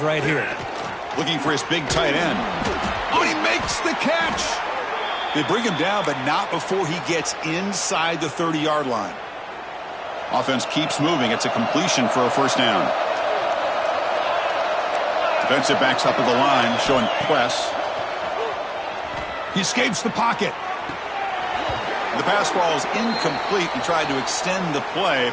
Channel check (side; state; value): both; identical; correlation 1.00